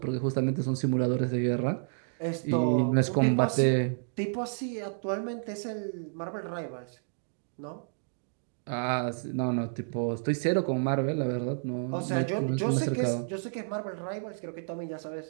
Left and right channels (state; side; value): silent; left; digital silence